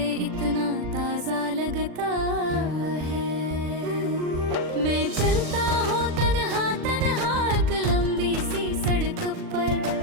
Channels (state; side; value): late; left; 39 ms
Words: इतना ताज़ा लगता है। मैं चलता हूँ तन्हा तन्हा एक लंबी सी सड़क पर,